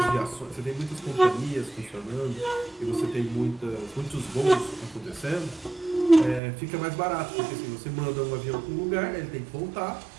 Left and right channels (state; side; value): drops out; left; at 6.4 s